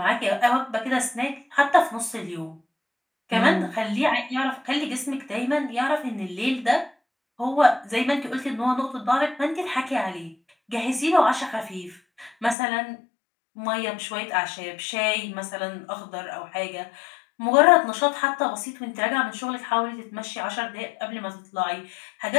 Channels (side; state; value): right; drops out; at 12.6 s